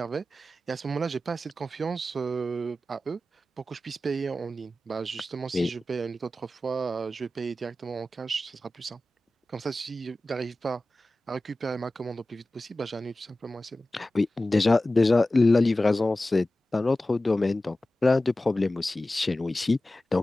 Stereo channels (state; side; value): normal; both; correlation 0.95